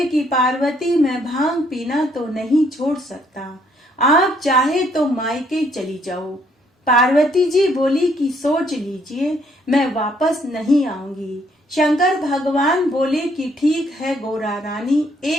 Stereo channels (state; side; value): normal; both; correlation 0.68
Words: कि पार्वती, मैं भांग पीना तो नहीं छोड़ सकता। आप चाहे तो मायके चली जाओ। पार्वती जी बोली कि सोच लीजिए, मैं वापस नहीं आऊंगी। शंकर भगवान बोले कि ठीक है गोरा रानी,